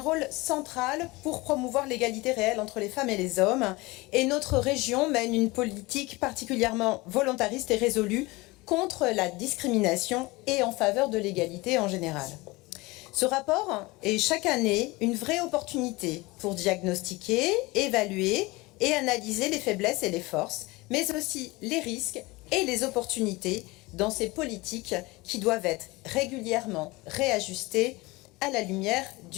central pour promouvoir l'égalité réelle entre les femmes et les hommes. Et notre région mène une politique particulièrement volontariste et résolue contre la discrimination et en faveur de l'égalité en général. Ce rapport est chaque année une vraie opportunité pour diagnostiquer, évaluer et analyser les faiblesses et les forces, mais aussi les risques et les opportunités dans ces politiques qui doivent être régulièrement réajustées à la lumière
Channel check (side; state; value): right; quieter; 22.7 dB